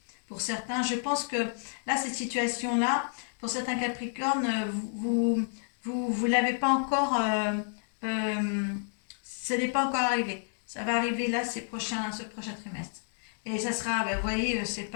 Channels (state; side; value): silent; right; 58 dB below the other